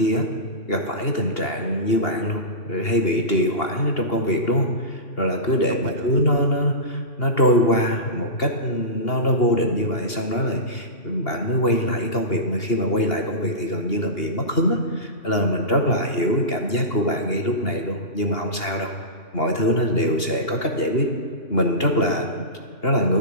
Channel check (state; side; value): late; right; 2.8 ms